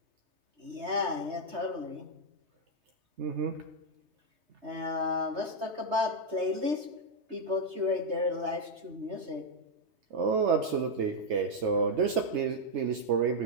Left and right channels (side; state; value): left; late; 3.2 ms